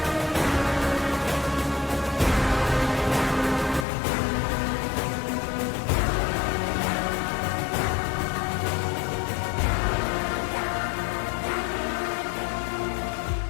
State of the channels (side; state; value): right; drops out; at 3.9 s